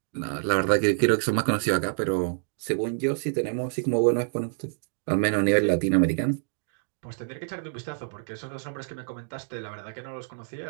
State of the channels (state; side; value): silent; left; digital silence